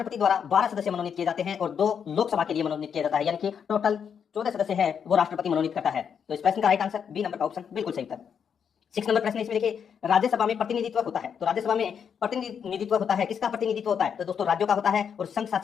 द्वारा 12 सदस्य मनोनीत किए जाते हैं और 2 लोकसभा के लिए मनोनीत किया जाता है, यानी कि टोटल 14 सदस्य है वो राष्ट्रपति मनोनीत करता है। तो इस प्रश्न का राइट आंसर बी नंबर का ऑप्शन बिल्कुल सही उत्तर। 6 नंबर प्रश्न इसमें देखिए, राज्यसभा में प्रतिनिधित्व होता है, तो राज्यसभा में प्रतिनिधित्व होता है, किसका प्रतिनिधित्व होता है? तो दोस्तों राज्यों का होता है और संघ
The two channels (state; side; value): quieter; right; 7.4 dB